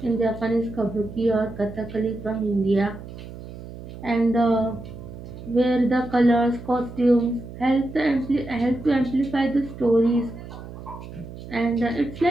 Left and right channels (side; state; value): right; noise; hum, 13 dB below the sound